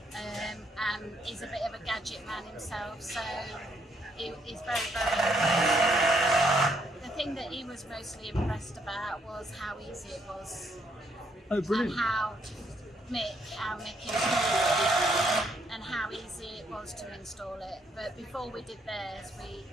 And he's a bit of a gadget man himself, so he's very, very impressed. The thing that he was mostly impressed about was how easy it was. Oh, brilliant. And how Mick installed it and how easy it was to install it. But before we did theirs,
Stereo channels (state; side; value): normal; both; correlation 0.72